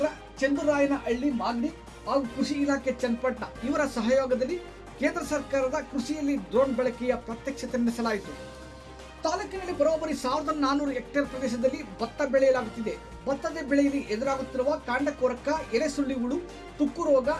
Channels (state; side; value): identical; both; correlation 1.00